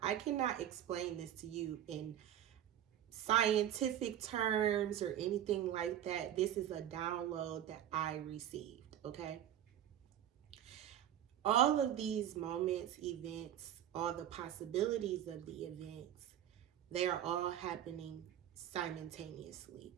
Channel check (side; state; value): left; quieter; 10.9 dB